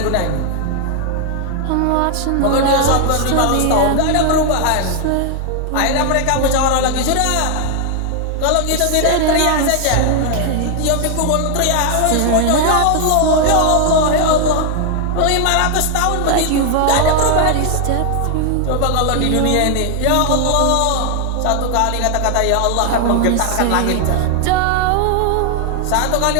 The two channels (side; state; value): both; different; correlation 0.00